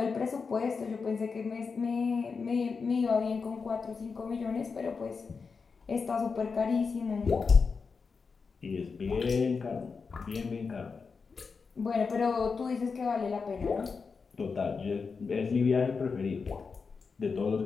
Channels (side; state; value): right; quieter; 5.1 dB